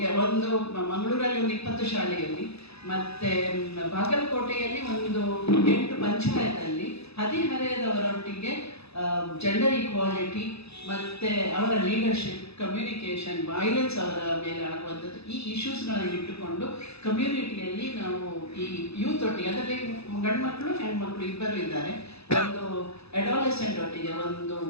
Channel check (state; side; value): late; right; 0.79 ms